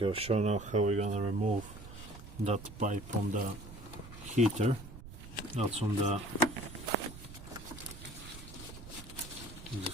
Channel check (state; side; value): noise; right; rumble, 14 dB below the sound